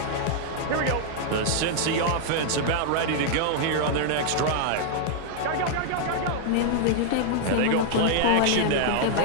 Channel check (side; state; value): both; different; correlation -0.01